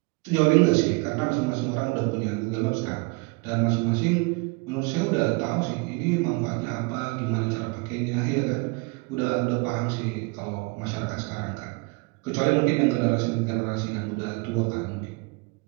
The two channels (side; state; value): left; quieter; 28.4 dB